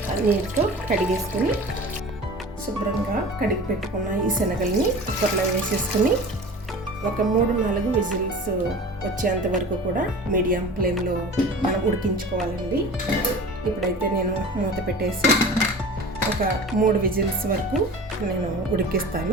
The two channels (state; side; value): normal; both; correlation 0.38